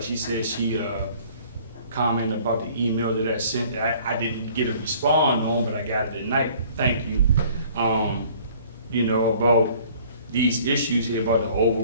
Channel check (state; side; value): inverted; both; correlation -0.54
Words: she said, she commented about the email that I sent. I didn't get a response on, but I got it tonight. Thank you. You know, about these issues here about the